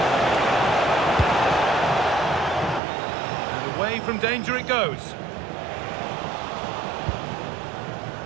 And away from danger it goes.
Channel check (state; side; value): drops out; left; at 2.8 s